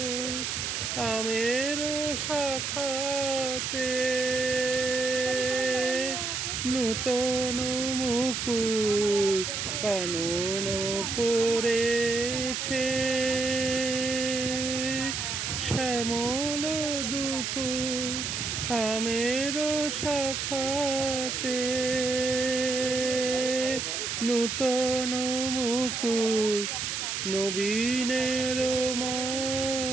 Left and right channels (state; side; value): noise; right; hiss, 2 dB below the sound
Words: আমের শাখাতে, নূতন মুকুল কানন পড়েছে শ্যামল দুকুল আমের শাখাতে, নূতন মুকুল নবীনের